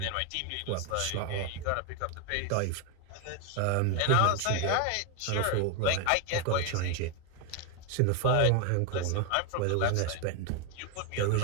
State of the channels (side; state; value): both; different; correlation 0.01